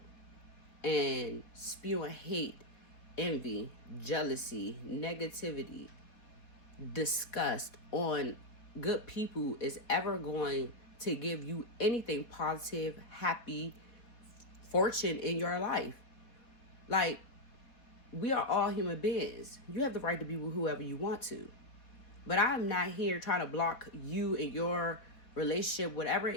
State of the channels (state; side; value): late; right; 4.3 ms